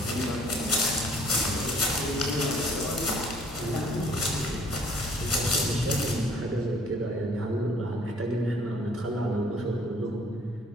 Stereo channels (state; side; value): normal; both; correlation 0.58